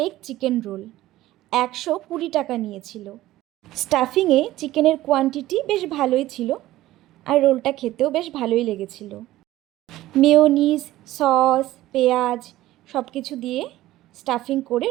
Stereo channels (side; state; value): left; quieter; 15.7 dB